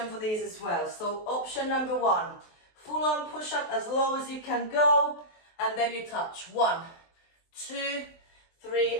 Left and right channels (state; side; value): late; right; 23 ms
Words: for these as well. So option number 1, full-on push-up as low as you can go, and then you touch. 1, 2, 3,